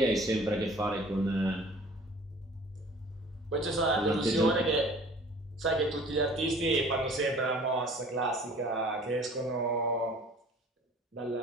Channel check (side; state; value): both; normal; correlation 0.48